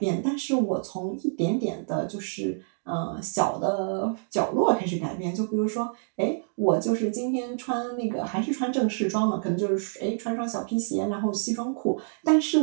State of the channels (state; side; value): silent; left; digital silence